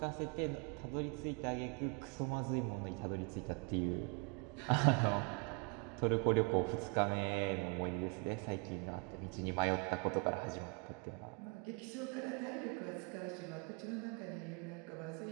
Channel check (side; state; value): left; quieter; 33.2 dB